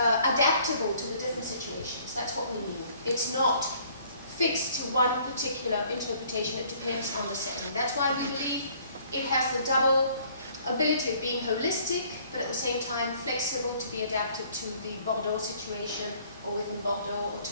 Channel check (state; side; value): inverted; both; correlation -0.59